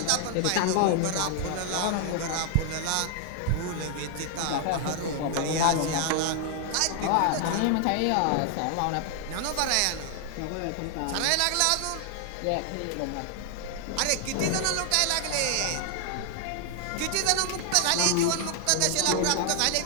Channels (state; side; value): different; both; correlation 0.00